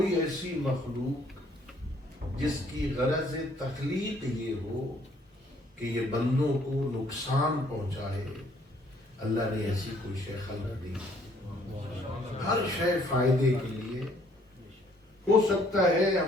ایسی مخلوق جس کی غرض تخلیق یہ ہو کہ یہ بندوں کو نقصان پہنچائے، اللہ نے ایسی کوئی شے خلق دی۔ ہر شے فائدے کے لیے ہو سکتا ہے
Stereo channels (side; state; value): both; normal; correlation 0.63